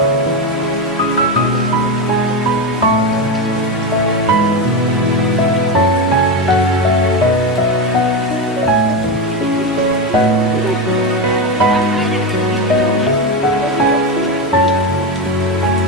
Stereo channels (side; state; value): both; normal; correlation 0.15